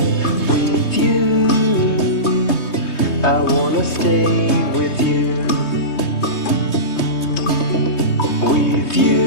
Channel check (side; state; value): right; late; 3.2 ms